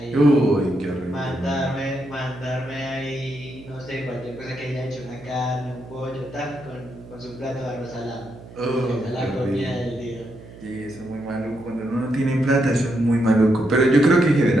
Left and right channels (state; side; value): noise; right; hum, 18 dB below the sound